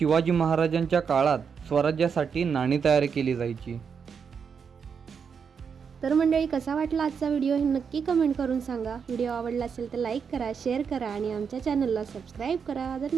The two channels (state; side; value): quieter; left; 6.4 dB